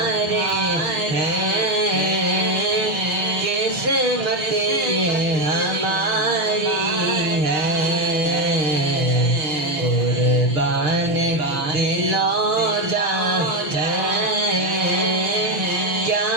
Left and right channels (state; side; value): late; left; 7.0 ms